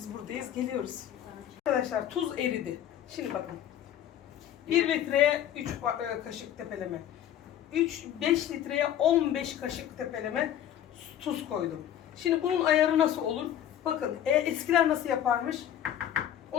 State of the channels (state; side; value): quieter; right; 10.9 dB